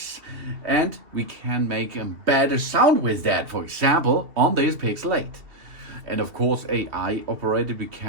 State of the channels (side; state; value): left; late; 2.7 ms